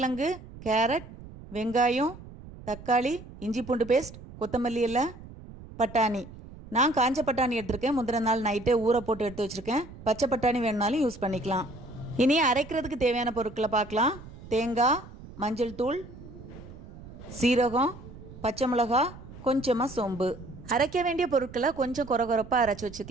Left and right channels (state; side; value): noise; right; rumble, 16 dB below the sound